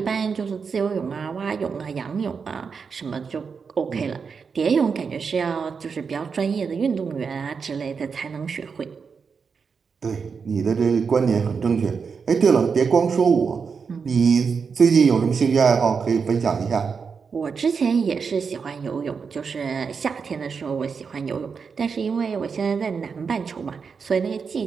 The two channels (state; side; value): quieter; left; 5.7 dB